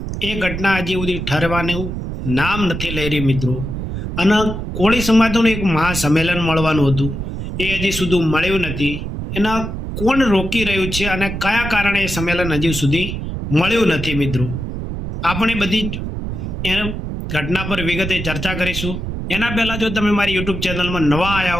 એ ઘટના હજી સુધી ઠરવાનું નામ નથી લઈ રહી મિત્રો। અને કોળી સમાજનું એક મહાસંમેલન મળવાનું હતું એ હજી સુધી મળ્યું નથી। એના કોણ રોકી રહ્યું છે અને કયા કારણે એ સંમેલન હજી સુધી મળ્યું નથી મિત્રો। આપણે બધી એ ઘટના પર વિગતે ચર્ચા કરીશું। એના પહેલાં જો તમે મારી યુટ્યુબ ચેનલમાં નવા આવ્યા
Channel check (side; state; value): right; noise; rumble, 5 dB below the sound